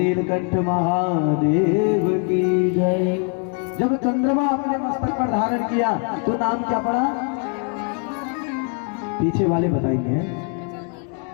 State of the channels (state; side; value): quieter; right; 38.7 dB